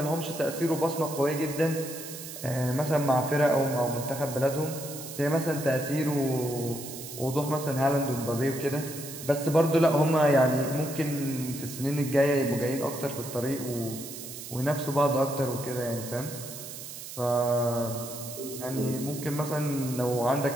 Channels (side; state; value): right; noise; hiss, 11 dB below the sound